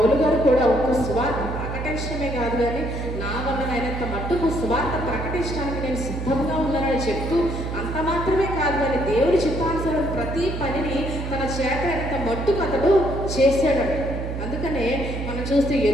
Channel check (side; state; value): right; noise; hum, 5 dB below the sound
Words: గారు కూడా ఒక సువార్త ప్రకటన ప్రకటించడమే కాదు కానీ నా వలనైనంత మట్టుకు సువార్త ప్రకటించడానికి నేను సిద్ధంగా ఉన్నానని చెప్తూ అంత మాత్రమే కాదు కానీ దేవుడి చిత్తానుసారం ప్రతి పనిని తన చేత అయినంత మట్టుకు అతడు చేశాడంట. అందుకనే మనం చూస్తే